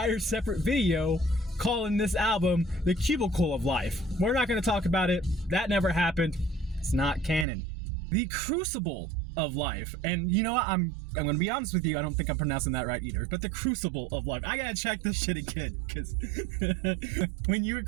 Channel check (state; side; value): drops out; left; at 7.5 s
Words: separate video calling this album The Cubicle of Life. We're not going to talk about it. That never happened. It's not canon. The Crucible of Life. And you know what? I'm going to be honest with you. I don't think I'm pronouncing that right either. But The Crucible of Life. I got to check this shit again. Because when you